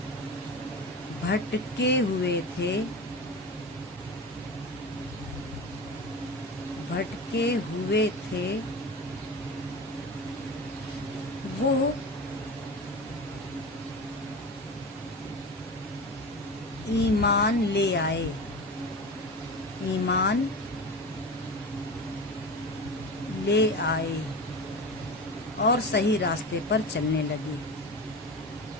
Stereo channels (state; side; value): normal; both; correlation 0.28